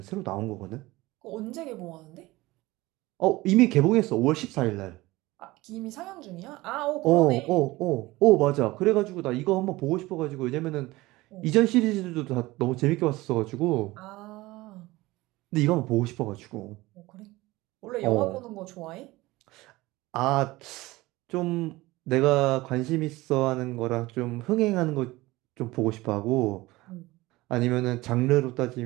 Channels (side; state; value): left; quieter; 19.7 dB